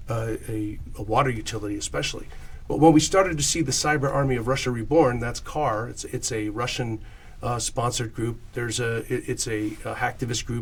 a water utility especially. But when we started to see the cyber army of Russia reborn, that's CAR. It's a Russian sponsored group. It's a hacktivist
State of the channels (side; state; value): both; identical; correlation 1.00